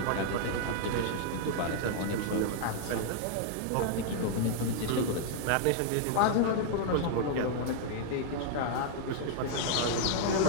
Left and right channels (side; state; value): both; different; correlation 0.00